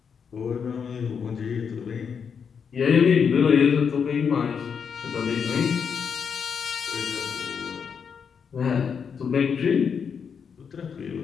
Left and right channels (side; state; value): right; quieter; 6.6 dB